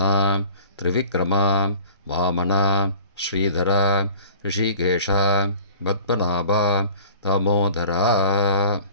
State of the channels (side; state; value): both; inverted; correlation -0.45